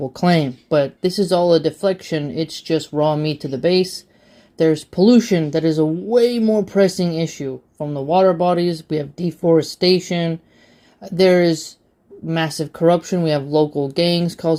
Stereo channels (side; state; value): both; identical; correlation 1.00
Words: claim, but this is all a deflection. It's just raw meat to the base. There's pollution that is a way more pressing issue from the water bodies. We have deforestation. There is massive corruption. We have local gangs